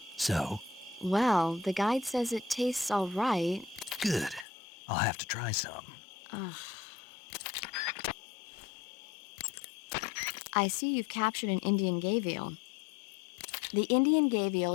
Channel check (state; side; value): drops out; right; at 4.5 s